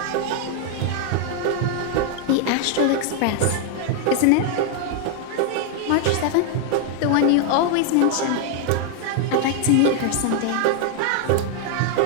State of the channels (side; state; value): both; different; correlation 0.00